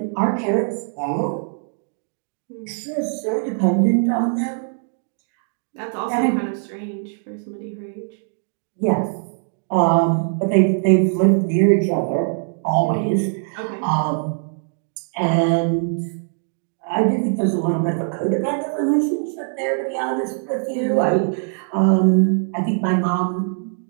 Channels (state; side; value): silent; left; 62 dB below the other